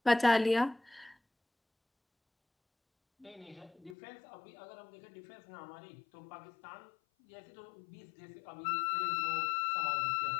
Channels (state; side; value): drops out; right; at 4.0 s